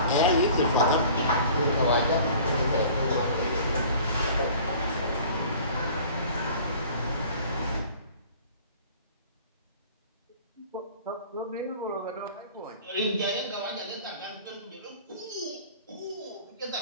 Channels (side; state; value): both; inverted; correlation -0.47